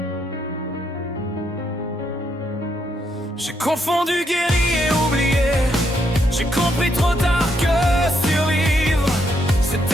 J'ai confondu guéri et oublié. J'ai compris trop tard que survivre,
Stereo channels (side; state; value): both; normal; correlation 0.76